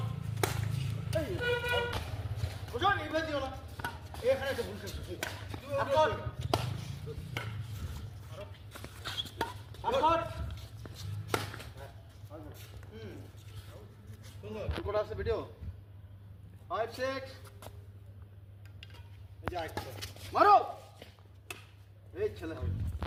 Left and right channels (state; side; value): identical; both; correlation 1.00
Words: ভিডিও 5 6 মারো এই ছেলে